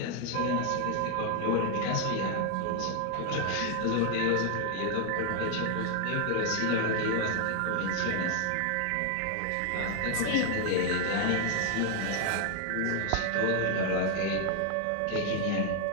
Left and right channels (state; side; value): different; both; correlation 0.00